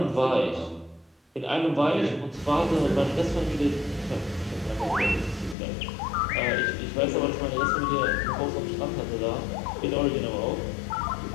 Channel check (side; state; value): right; drops out; at 5.6 s